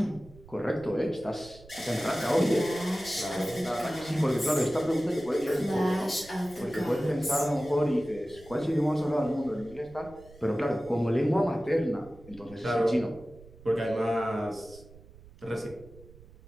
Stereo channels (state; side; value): noise; right; rumble, 22 dB below the sound